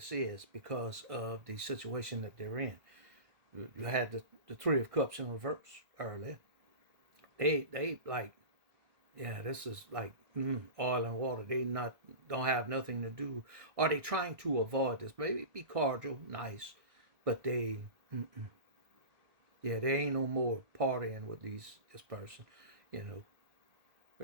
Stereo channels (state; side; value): late; left; 1.5 ms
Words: is because of the situation that they're in. You had the Three of Cups in reverse earlier. They like, yeah, this is like oil and water. They don't have nothing to do. Are they trying to avoid this? Maybe be cordial, nice, but yeah, they ain't no more partying with this person. You know,